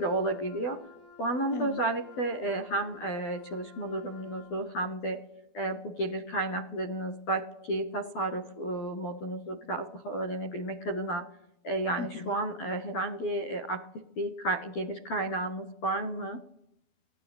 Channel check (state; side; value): late; right; 12 ms